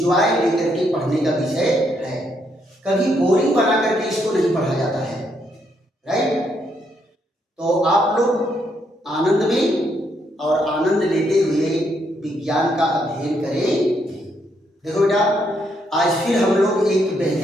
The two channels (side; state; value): both; normal; correlation 0.75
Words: लेकर के पढ़ने का विषय है। कभी बोरिंग बना करके इसको नहीं पढ़ा जाता है, राइट? तो आप लोग आनंद में और आनंद लेते हुए विज्ञान का अध्ययन करें। देखो बेटा, आज फिर हम लोग एक